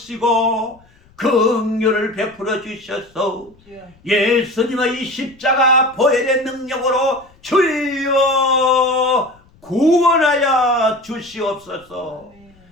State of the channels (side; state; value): left; noise; rumble, 30 dB below the sound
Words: 긍휼을 베풀어 주셔서 예수님의 이 십자가 보혈의 능력으로 주여 구원하여 주시옵소서.